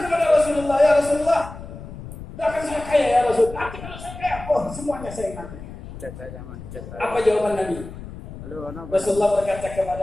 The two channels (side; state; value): left; noise; rumble, 13 dB below the sound